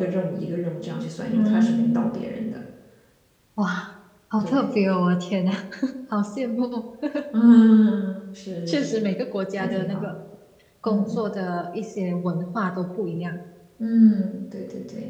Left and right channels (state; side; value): identical; both; correlation 1.00